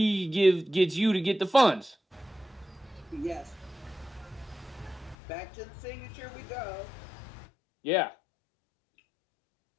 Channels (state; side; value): drops out; right; at 5.2 s